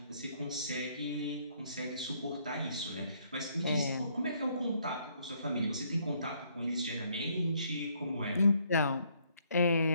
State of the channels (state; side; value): inverted; both; correlation -0.68